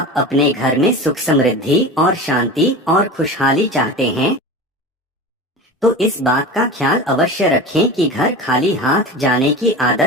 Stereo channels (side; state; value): both; normal; correlation 0.31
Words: अपने घर में सुख समृद्धि और शांति और खुशहाली चाहते हैं तो इस बात का ख्याल अवश्य रखें कि घर खाली हाथ जाने की